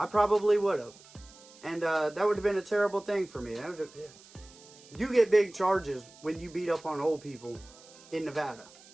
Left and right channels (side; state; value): right; noise; hiss, 23 dB below the sound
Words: And that would have been a terrible thing for me. You get big charges when you beat up on old people in Nevada.